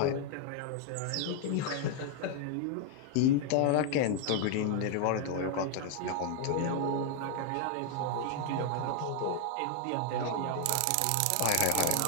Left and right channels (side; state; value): both; different; correlation 0.00